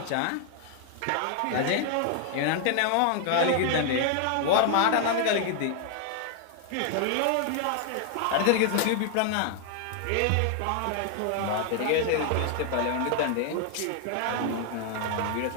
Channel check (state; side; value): different; both; correlation 0.00